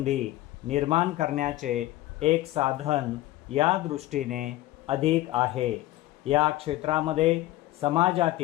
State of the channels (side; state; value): right; quieter; 16.3 dB